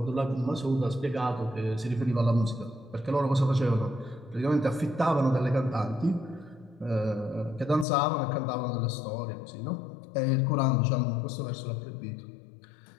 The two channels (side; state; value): right; drops out; at 7.9 s